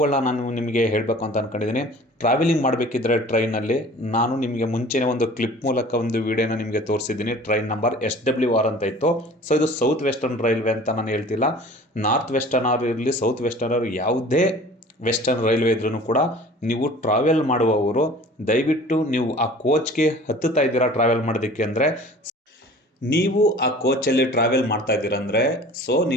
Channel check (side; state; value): both; normal; correlation 0.45